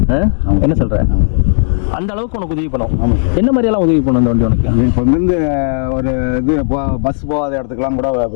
என்ன சொல்கிற? அந்த அளவுக்கு உனக்கு உதவி பண்ணும். என்ன மாதிரியெல்லாம் உதவி பண்ணும் அந்த வண்டி உனக்கு? இப்போ வந்து ஒரு இது பஸ் போகாத இடத்துக்குலாம் கூட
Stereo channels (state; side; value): silent; right; digital silence